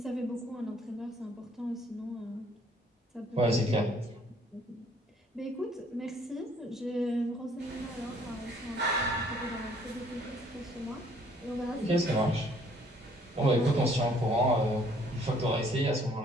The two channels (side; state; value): both; normal; correlation 0.61